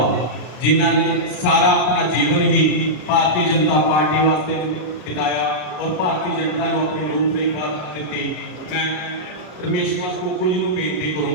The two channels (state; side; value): late; right; 33 ms